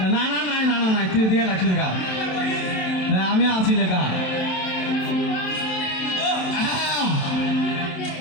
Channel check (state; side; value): late; right; 27 ms